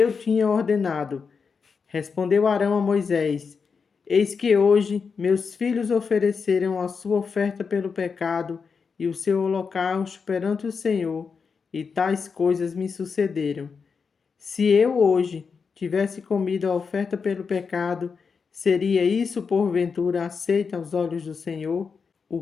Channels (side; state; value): right; quieter; 5.5 dB